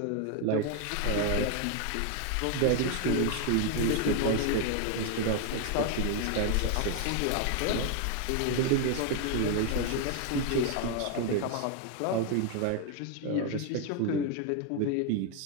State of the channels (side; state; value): both; different; correlation 0.01